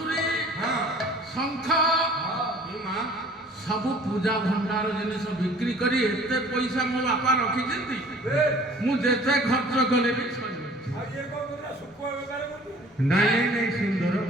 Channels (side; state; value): both; normal; correlation 0.50